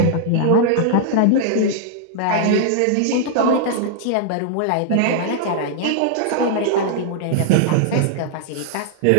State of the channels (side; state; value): both; different; correlation -0.01